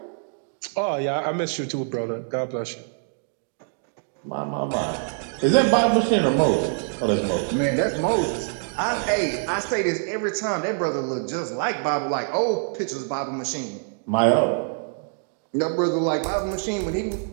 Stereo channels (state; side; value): silent; left; 62 dB below the other